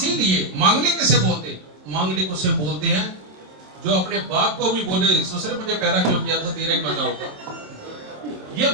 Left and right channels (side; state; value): left; late; 27 ms